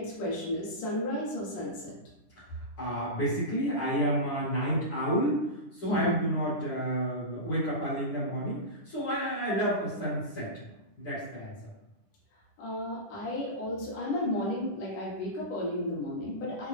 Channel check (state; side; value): late; right; 10 ms